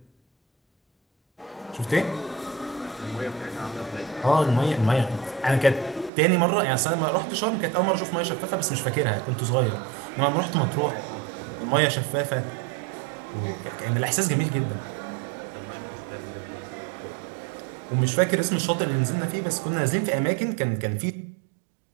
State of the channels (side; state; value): left; drops out; at 6.1 s